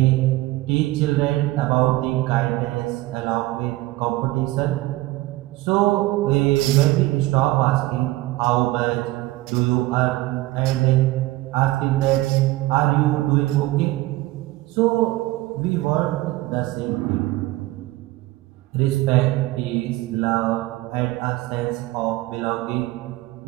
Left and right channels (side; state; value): left; quieter; 18.4 dB